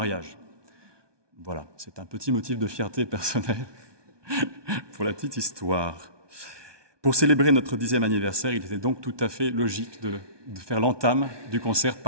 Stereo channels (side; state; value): left; late; 1.2 ms